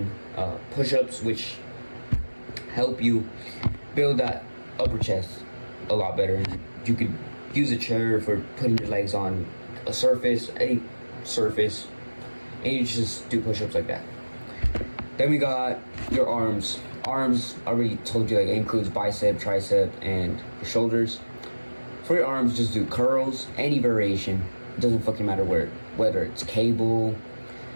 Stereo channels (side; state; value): both; inverted; correlation -1.00